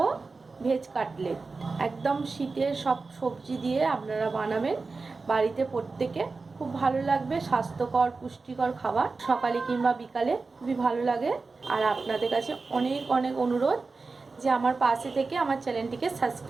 ভেজ কাটলেট। একদম শীতের সব সবজি দিয়ে আপনারা বানাবেন বাড়িতে, প্রত্যেকে খুব ভালো লাগবে। স্বাস্থ্যকর পুষ্টিকর খাবার, সকালে কিংবা বিকালে খুবই ভালো লাগে। আর আপনাদের কাছে অনেক অনেক অনুরোধ যে আমার পাশে থেকে আমার চ্যানেলটিকে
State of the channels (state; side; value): quieter; left; 4.0 dB